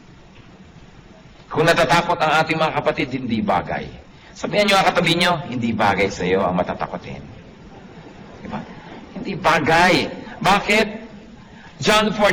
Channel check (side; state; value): both; identical; correlation 1.00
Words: Kung natatakot ang ating mga kapatid, hindi bagay. Sabihan nyo ang katabi nyo, hindi bagay sa'yo ang matatakotin. Diba? Hindi bagay. Bakit? John